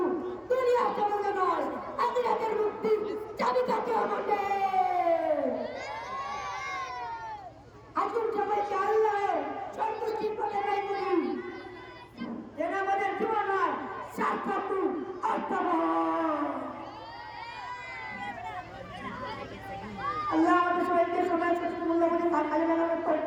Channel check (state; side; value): identical; both; correlation 1.00